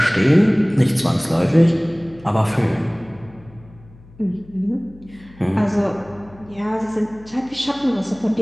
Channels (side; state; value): left; noise; hum, 23 dB below the sound